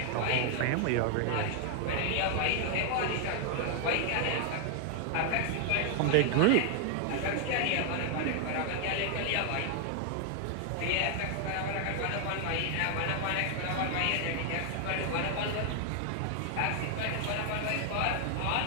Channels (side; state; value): both; different; correlation 0.00